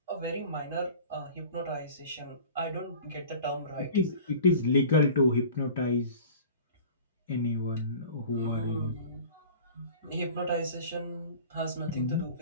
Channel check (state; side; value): inverted; both; correlation -0.42